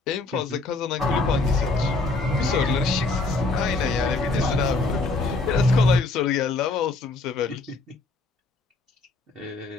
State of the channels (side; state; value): right; quieter; 3.4 dB